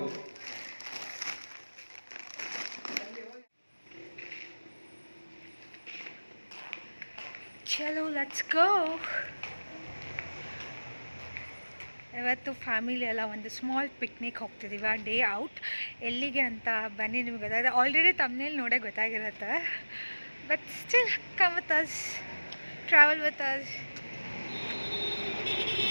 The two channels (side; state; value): both; inverted; correlation -1.00